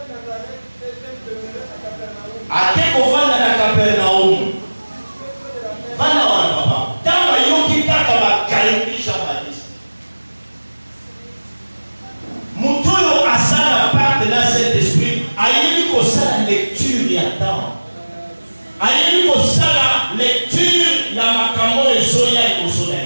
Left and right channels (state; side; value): inverted; both; correlation -1.00